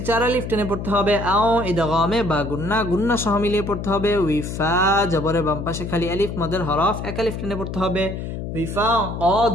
চার আলিফ টেনে পড়তে হবে আও ইদগামে বা গুন্না গুন্না সহ মিলিয়ে পড়তে হবে উইফা জবরে বাম পাশে খালি আলিফ মদের হরফ এক আলিফ টেনে পড়তে হবে উইফা ক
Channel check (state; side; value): noise; left; hum, 6 dB below the sound